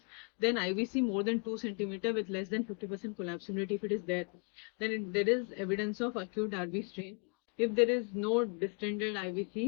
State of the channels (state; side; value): quieter; right; 36.8 dB